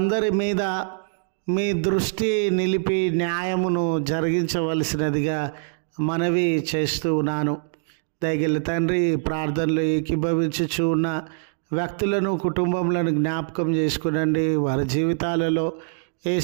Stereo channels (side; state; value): left; silent; digital silence